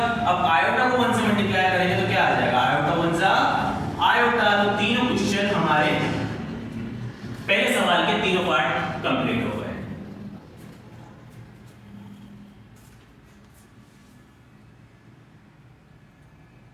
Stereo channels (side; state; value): both; identical; correlation 1.00